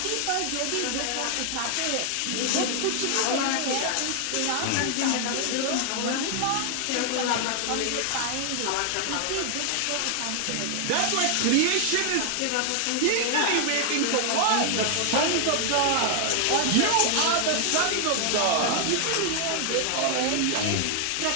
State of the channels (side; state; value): both; different; correlation 0.00